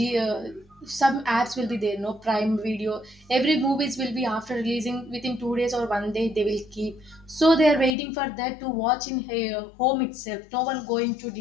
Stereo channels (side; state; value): right; drops out; at 8.0 s